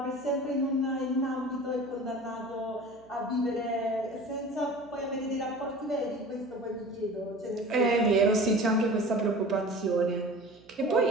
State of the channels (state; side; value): noise; right; hum, 27 dB below the sound